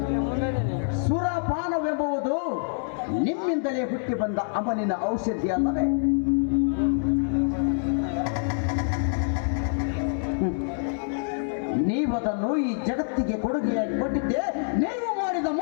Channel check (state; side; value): silent; right; 61 dB below the other